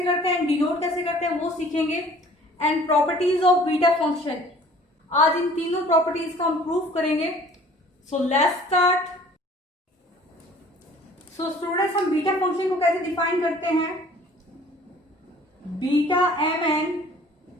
करते हैं, डिनोट कैसे करते हैं वो सीखेंगे। And properties of beta function, आज इन तीनों प्रॉपर्टीज का हम प्रूफ करेंगे। So let's start. So students, हम बीटा फंक्शन को कैसे डिफाइन करते हैं। Beta mn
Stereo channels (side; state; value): both; normal; correlation 0.52